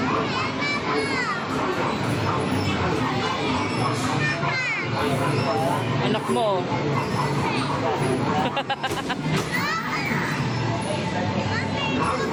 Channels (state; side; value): identical; both; correlation 1.00